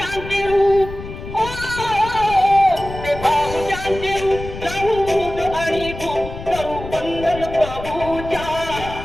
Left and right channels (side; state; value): left; noise; rumble, 11 dB below the sound